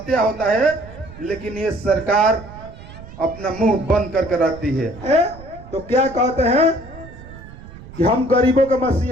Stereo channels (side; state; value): right; noise; rumble, 17 dB below the sound